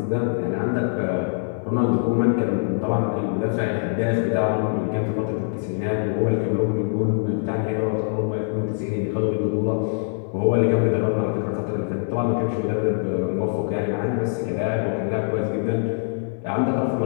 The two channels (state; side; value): silent; right; 63 dB below the other